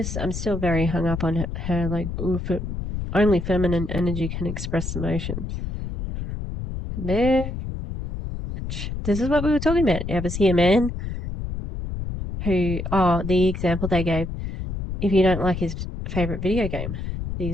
still very hung up on her like, only feminine energy can express emotions. Bitch. This is what we were talking about. You ever see a man the example they gave, if you don't like his favorite video game, the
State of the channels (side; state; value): left; noise; rumble, 5 dB below the sound